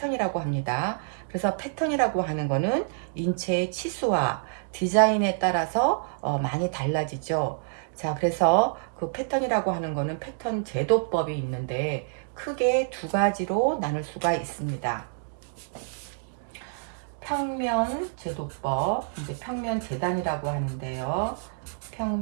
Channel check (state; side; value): silent; left; digital silence